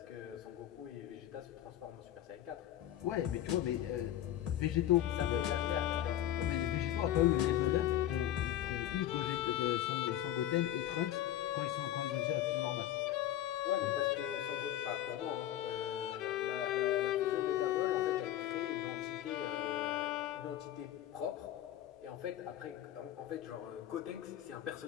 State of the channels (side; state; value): right; quieter; 12.3 dB